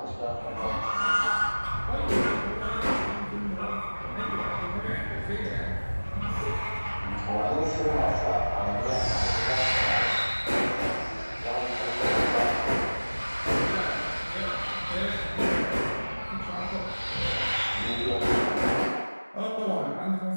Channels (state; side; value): inverted; both; correlation -1.00